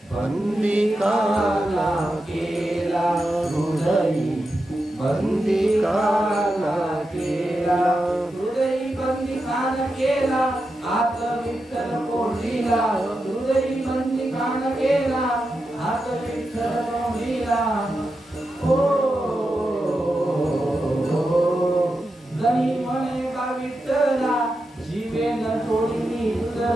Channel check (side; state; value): both; normal; correlation 0.89